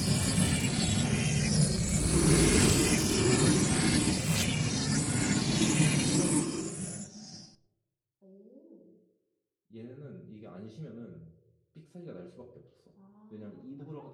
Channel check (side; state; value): both; identical; correlation 1.00